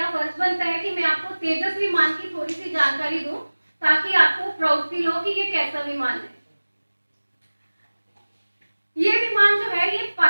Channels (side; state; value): both; inverted; correlation -1.00